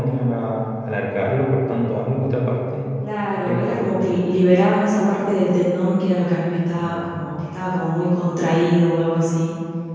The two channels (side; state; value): both; identical; correlation 1.00